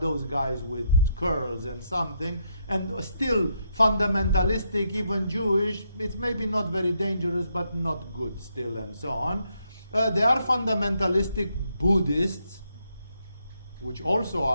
guys with curls and something, and still fundamentalistic, even Jewish. It's maybe not very dangerous, but not good still, and so on. They are fundamentalistic Buddhists, which also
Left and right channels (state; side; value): inverted; both; correlation -0.78